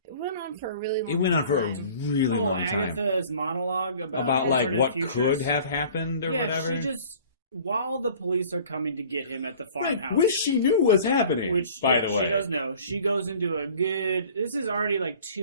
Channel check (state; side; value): inverted; both; correlation -0.48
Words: It went on for a really long time. It went on for a really long time. Agatha's monologue About like alternate what futures. could have happened or whatever. She just, while the police are coming to get him at the farmhouse, Which she knew was happening, by the way. she does know. She goes into a good. This is already like